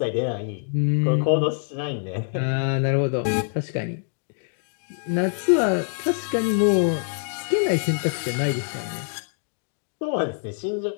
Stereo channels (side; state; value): right; silent; digital silence